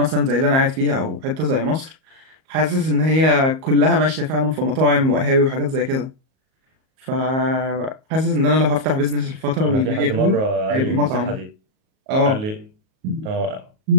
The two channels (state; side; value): late; left; 38 ms